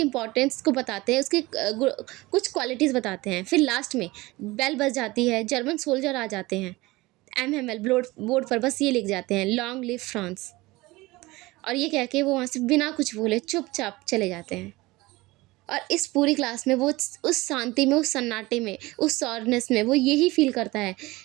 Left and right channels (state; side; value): quieter; left; 20.7 dB